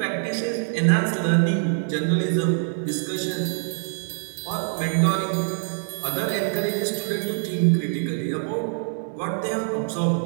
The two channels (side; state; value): left; silent; digital silence